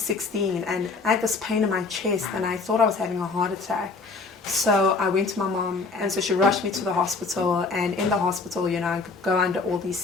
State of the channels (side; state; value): right; quieter; 4.1 dB